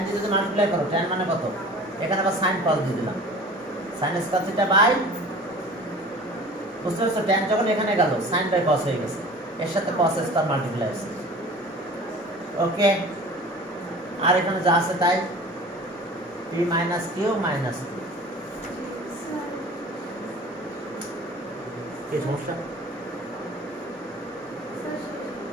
দিয়ে যদি মাল্টিপ্লাই করো, tan মানে কত, এখানে আবার সাইন cos দিয়ে দিলাম, সাইন স্কোয়ার থিটা বাই, বুঝতে পারছো tan যখন এখানে গেল সাইন বাই cos হয়ে গেছে, এর সাথে cos স্কোয়ার মাল্টিপ্লাই আছে। ওকে, আর এখানে যা আছে তাই p মাইনাস কিউ মাইনাস 2। কি সমস্যা,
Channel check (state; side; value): normal; both; correlation 0.42